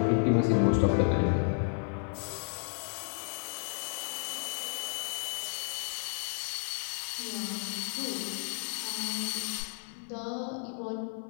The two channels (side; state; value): right; silent; 56 dB below the other